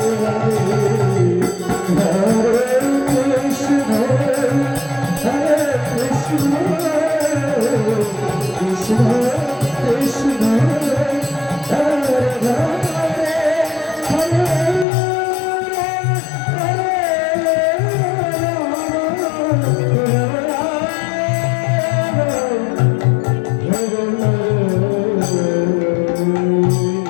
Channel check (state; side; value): drops out; right; at 14.9 s